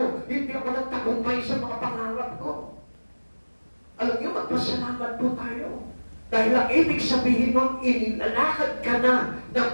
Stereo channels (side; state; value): both; inverted; correlation -1.00